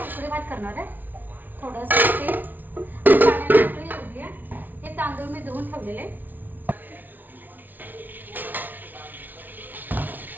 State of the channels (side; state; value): left; late; 0.084 ms